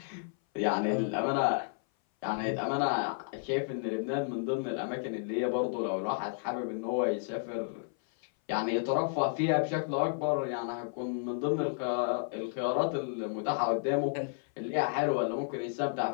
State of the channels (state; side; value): silent; right; 56 dB below the other